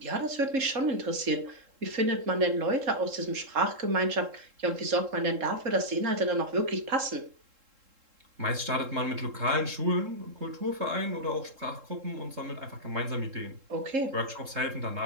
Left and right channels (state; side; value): late; left; 3.7 ms